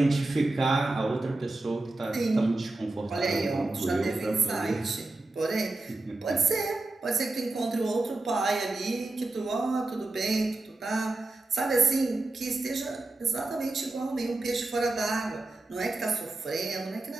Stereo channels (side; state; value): left; quieter; 3.0 dB